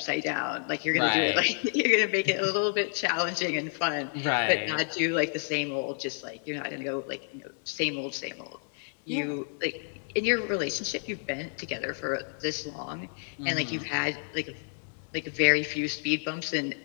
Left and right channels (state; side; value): silent; right; 58 dB below the other